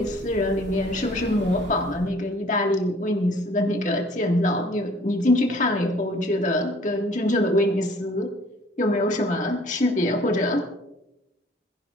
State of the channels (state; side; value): normal; both; correlation 0.55